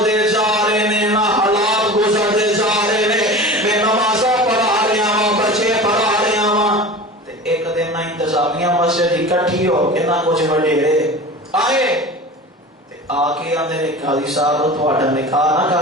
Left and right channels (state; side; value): normal; both; correlation 0.35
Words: جا رہے نے نا، حالات گزرتے جا رہے نے، میں نمازاں پڑھا رہا ہاں، بچے پڑھا رہا ہاں، تے ایک دن نہ انتظامیہ مسجد اکٹھی ہو کے نہ کچھ وڈیرے آئے تے آ کے آندے نے قاضی صاحب تہاڈا نکاح نہ